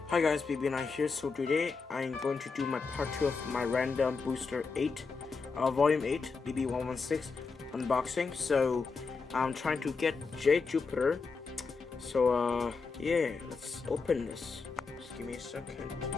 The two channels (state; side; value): quieter; right; 4.7 dB